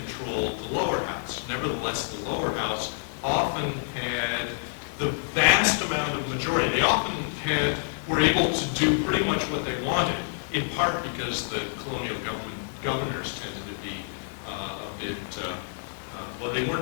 the lower house. Nevertheless, the lower house often had the vast amount of majority. They often were able to do pretty much what they wanted, in part because the colonial governors tended to be a bit, well, they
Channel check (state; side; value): silent; right; digital silence